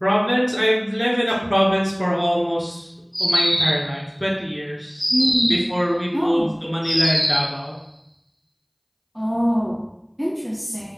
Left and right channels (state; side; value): identical; both; correlation 1.00